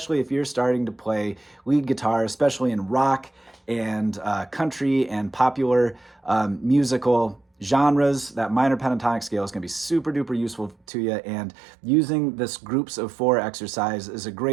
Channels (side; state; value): left; drops out; at 10.8 s